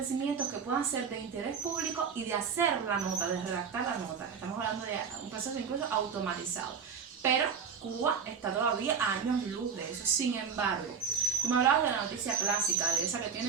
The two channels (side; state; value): left; quieter; 6.4 dB